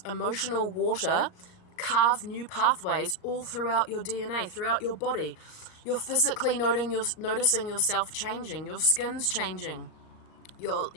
emotional water, carve new pathways all throughout your DNA, throughout your body. You're physically noticing yourself changing, your skin's changing,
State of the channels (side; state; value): right; late; 38 ms